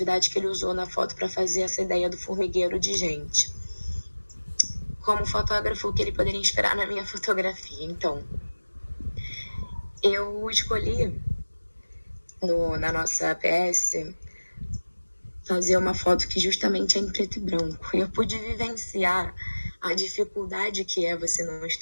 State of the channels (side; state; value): both; inverted; correlation -1.00